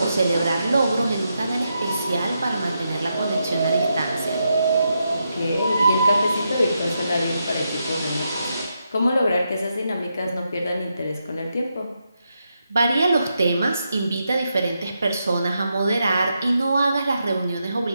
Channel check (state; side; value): inverted; both; correlation -0.84